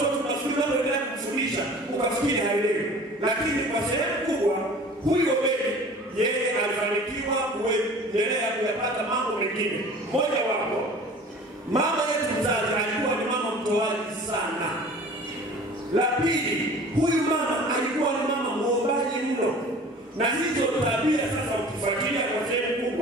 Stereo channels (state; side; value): normal; both; correlation 0.44